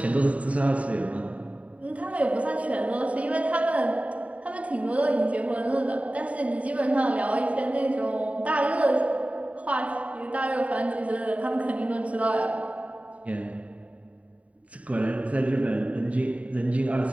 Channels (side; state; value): left; late; 0.067 ms